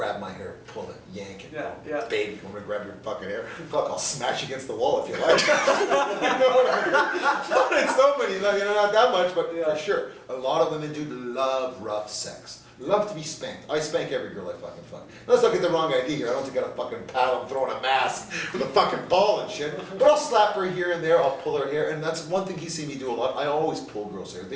my hair, pull it, yank it. Yeah. Baby, you want me to grab your fucking hair? Fuck, I'll smash you against the wall if you like. You know what I mean? Not in so many, not that much, but Yeah. for sure. A lot of women do love rough sex. Love to be spanked. I spank every girl I fucking fuck. Let's not get the wrong idea here. I don't think I got a fucking paddle, I'm throwing a mask with a fucking ball and shit. But I'll slap her here and there, I'll pull her hair, and that's one thing he's seen me do a lot. I always pull girls' hair.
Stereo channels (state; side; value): identical; both; correlation 1.00